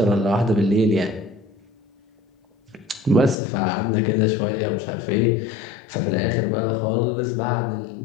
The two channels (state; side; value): drops out; right; at 3.4 s